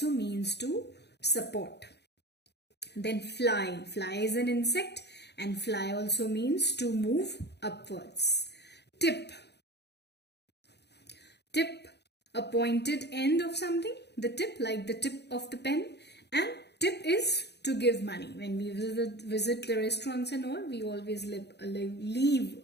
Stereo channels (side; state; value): right; late; 0.49 ms